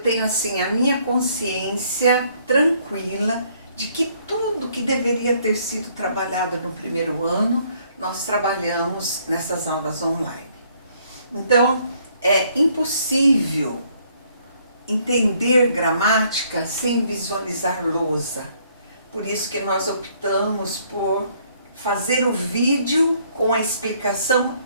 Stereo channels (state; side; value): inverted; both; correlation -0.66